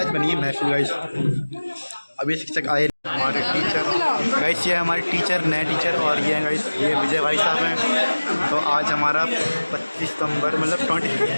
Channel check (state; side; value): inverted; both; correlation -1.00